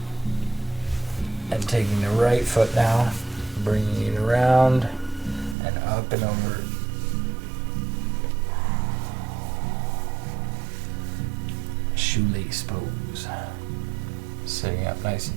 And taking the right foot now, bringing it around and up and over. Shoelace pose. Sitting up nice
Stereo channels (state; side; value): drops out; left; at 5.6 s